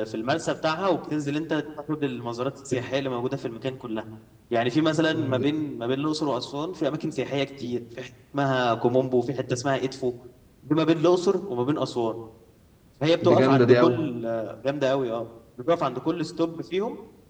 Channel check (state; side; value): identical; both; correlation 1.00